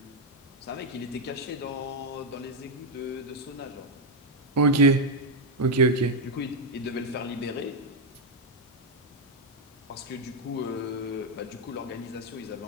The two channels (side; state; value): both; normal; correlation 0.00